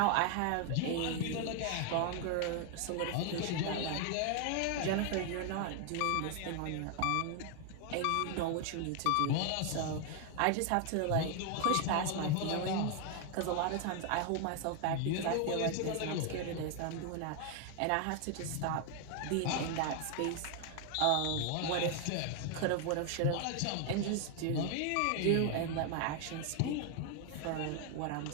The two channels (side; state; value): both; different; correlation 0.00